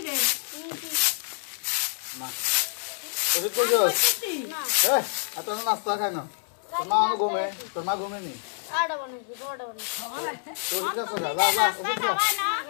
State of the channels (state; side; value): silent; right; digital silence